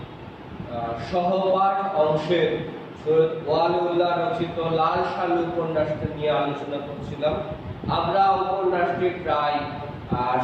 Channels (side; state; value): both; identical; correlation 1.00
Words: সহপাঠ অংশের সৈয়দ ওয়ালিউল্লাহ রচিত লাল সালু উপন্যাসটি নিয়ে আলোচনা করছিলাম। আমরা উপন্যাসটি প্রায়